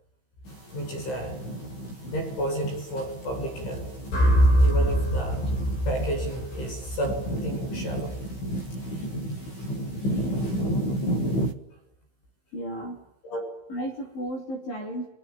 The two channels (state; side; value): late; right; 15 ms